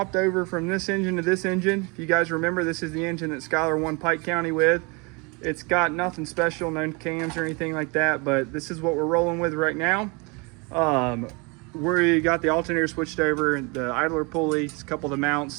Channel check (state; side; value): quieter; left; 29.7 dB